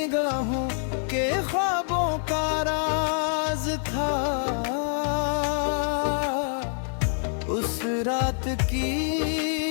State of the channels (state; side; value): silent; right; 56 dB below the other